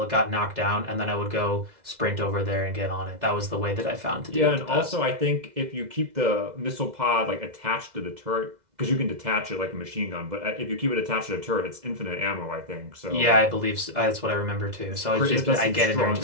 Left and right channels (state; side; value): late; left; 2.0 ms